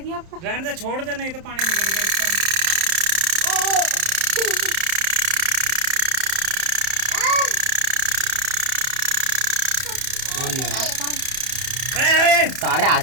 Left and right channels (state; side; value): late; left; 31 ms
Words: आपको? रहने दे, छोड़ दे, नहीं तो पानी निकलेगा इसका। सारे आ